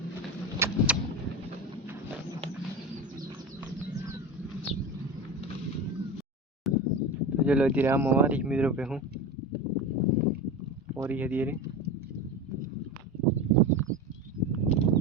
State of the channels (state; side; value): normal; both; correlation 0.25